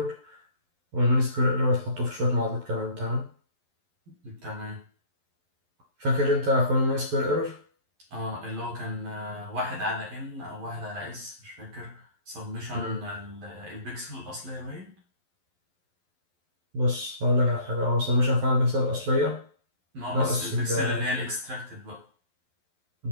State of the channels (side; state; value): left; late; 11 ms